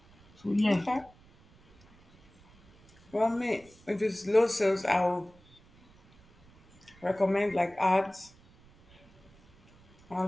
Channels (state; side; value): noise; right; rumble, 28 dB below the sound